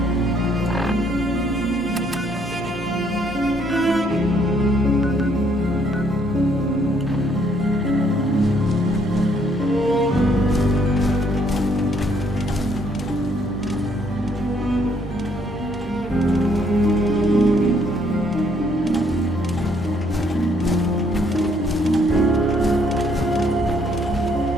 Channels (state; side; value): normal; both; correlation 0.67